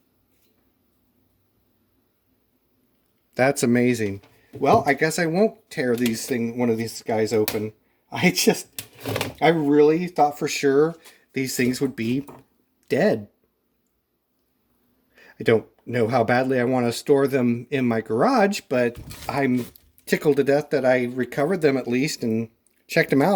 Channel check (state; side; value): identical; both; correlation 1.00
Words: That's amazing. Well, I guess I won't tear one of these guys open. I really thought for sure these things would be dead. I don't know how badly I want to store them in my garage, but I'm tickled to death that I recovered them at least and checked them